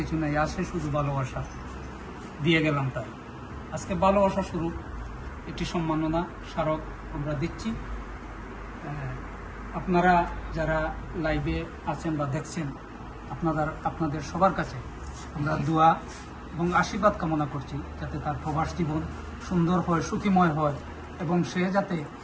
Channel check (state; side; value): identical; both; correlation 1.00